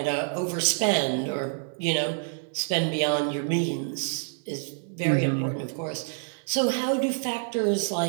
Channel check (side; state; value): left; silent; digital silence